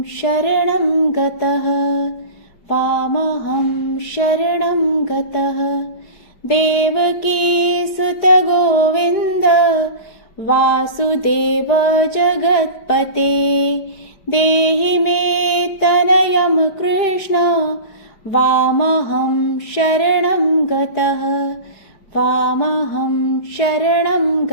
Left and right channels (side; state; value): right; late; 5.0 ms